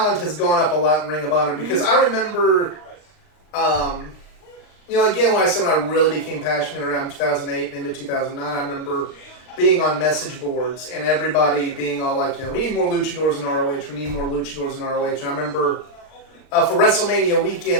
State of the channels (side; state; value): right; late; 39 ms